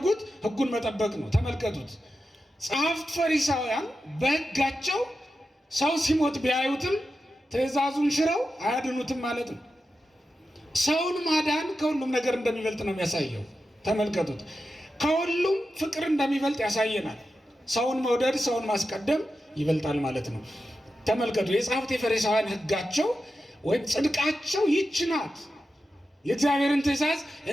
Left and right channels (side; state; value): both; normal; correlation 0.91